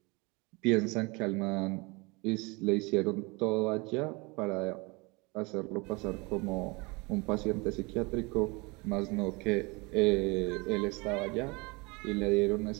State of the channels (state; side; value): quieter; left; 27.0 dB